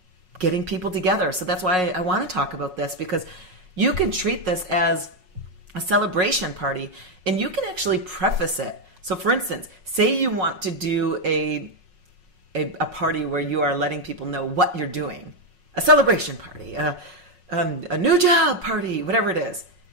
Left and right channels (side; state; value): left; late; 5.5 ms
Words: getting people together. So that's why I want to talk about this, because you can treat this as a celebration party, and you can actually preface it. So for instance, say you want to do a party where you are letting people know what you're doing, a celebration party, a new job party, whatever it is.